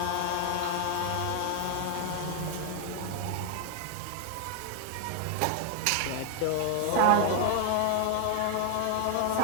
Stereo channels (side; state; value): both; different; correlation 0.00